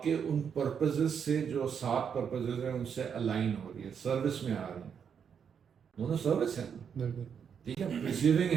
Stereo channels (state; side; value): quieter; left; 7.3 dB